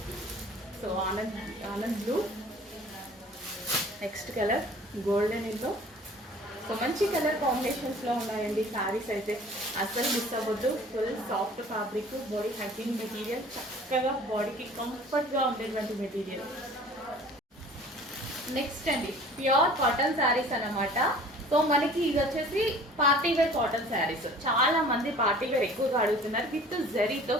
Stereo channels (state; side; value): normal; both; correlation 0.48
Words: So Anand blue. Next colour golden yellow. So మంచి కలర్ కాంబినేషన్స్లో ఉన్నాయండి శారీస్ అయితే, అసలు మిస్ అవ్వద్దు. Full soft fabric, body hugging material, చక్కగా బాడీకి కంఫర్ట్గా ఉండేటువంటి మెటీరియల్. నెక్స్ట్ అండి ప్యూర్ కాటన్ శారీస్ అన్నమాట. సో మనకి ఇది వచ్చేసి పార్టీ వేర్ కాటన్ శారీస్. చాలా మంది పార్టీ వేర్ ఎక్కువగా అడుగుతున్నారు. విత్ జరీతో